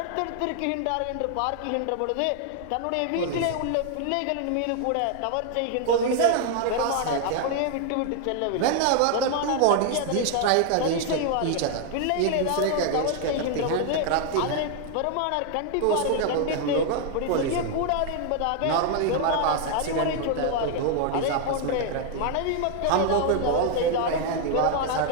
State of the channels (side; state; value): both; different; correlation 0.00